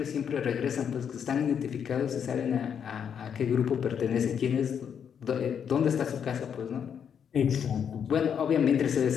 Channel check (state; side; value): quieter; right; 7.8 dB